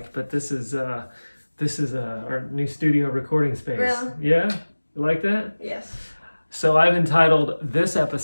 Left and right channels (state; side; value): inverted; both; correlation -1.00